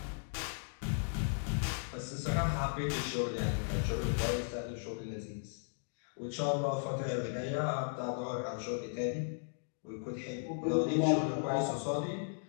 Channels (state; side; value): silent; right; digital silence